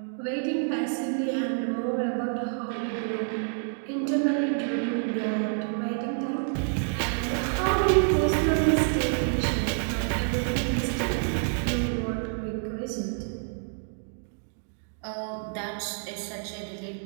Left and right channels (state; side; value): silent; left; 59 dB below the other